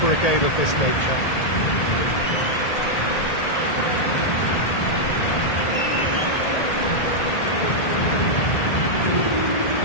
a game of this nature.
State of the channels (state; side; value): late; right; 1.8 ms